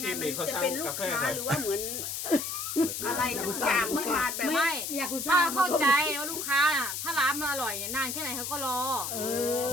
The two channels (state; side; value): noise; left; hiss, 4 dB below the sound